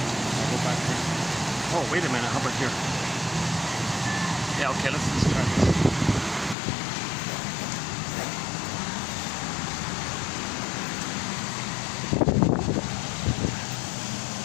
I'll go back here. Oh, wait a minute. How about here? Yeah, okay. Let's try this.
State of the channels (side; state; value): right; drops out; at 6.6 s